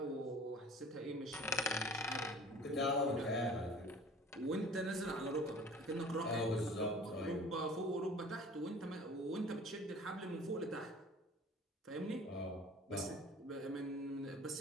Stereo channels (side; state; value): both; normal; correlation 0.46